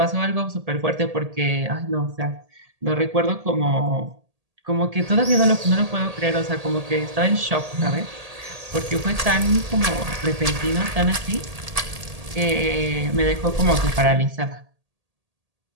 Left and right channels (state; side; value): late; left; 1.8 ms